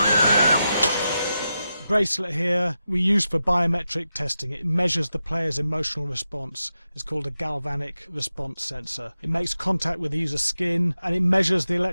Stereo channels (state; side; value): inverted; both; correlation -0.89